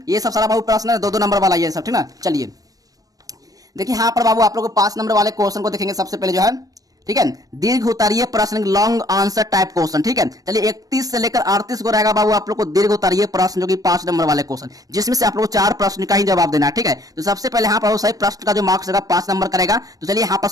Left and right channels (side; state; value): left; late; 0.18 ms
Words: ये सब सारा बाबू प्रश्न है, 2 नंबर वाला ये सब। ठीक ना, चलिए देखिए यहाँ पर बाबू आप लोग 5 नंबर वाले क्वेश्चन को देखेंगे सबसे पहले जो है, ठीक है, दीर्घ उत्तरीय प्रश्न, लॉन्ग आंसर टाइप क्वेश्चन, ठीक है। चलिए 31 से लेकर 38 को रहेगा बाबू आप लोग को दीर्घ उत्तरीय प्रश्न, जो कि 5 नंबर वाले क्वेश्चन, जिसमें से आप लोग को 4 प्रश्न का ही जवाब देना है, ठीक है। तो सबसे पहले यहाँ पर सही प्रश्न का जो मार्क्स रहेगा 5 नंबर करेगा। तो चलिए यहाँ पर